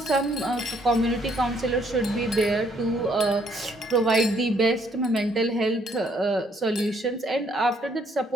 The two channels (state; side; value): normal; both; correlation 0.67